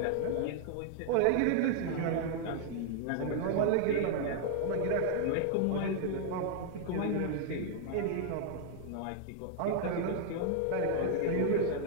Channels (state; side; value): different; both; correlation 0.00